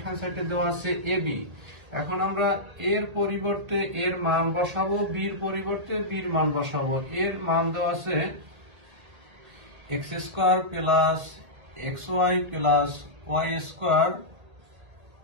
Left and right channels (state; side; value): late; left; 2.0 ms